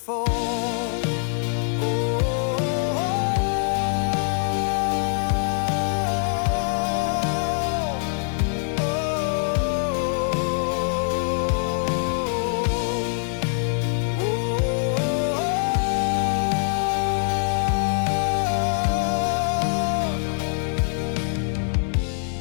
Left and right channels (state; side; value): silent; right; 63 dB below the other